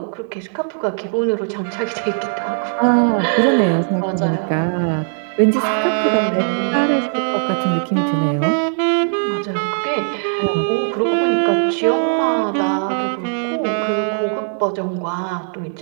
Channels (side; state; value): left; silent; digital silence